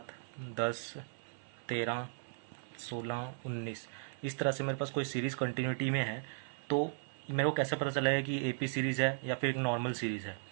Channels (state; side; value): silent; left; 53 dB below the other